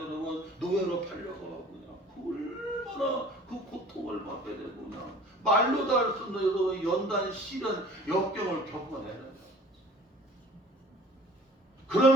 노예로 팔려가고 그냥 얼마나 그 고통을 받게 되고 그냥 말로도 할 수 없는 여러분 연단 시련 역경을 겪어내는 거예요.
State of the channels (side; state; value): both; normal; correlation 0.49